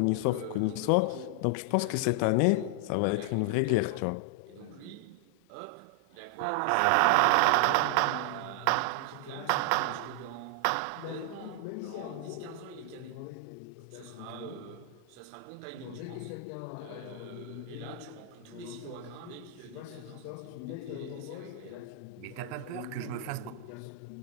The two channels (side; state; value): both; different; correlation 0.00